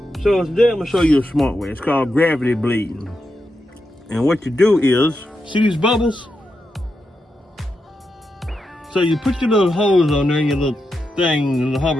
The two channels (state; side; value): normal; both; correlation 0.86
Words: So today I'm gonna show you a smart way. It's called gravity bleeding. And what you do is, see these bubbles? So you put your little holes on there in your little thing, the